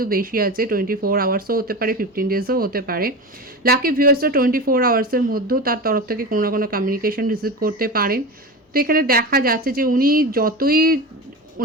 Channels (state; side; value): normal; both; correlation 0.26